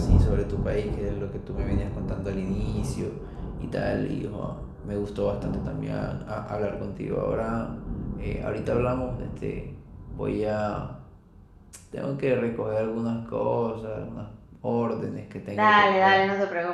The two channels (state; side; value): identical; both; correlation 1.00